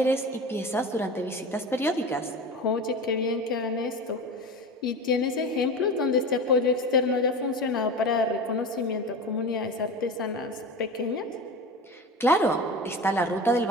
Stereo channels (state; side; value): normal; both; correlation 0.29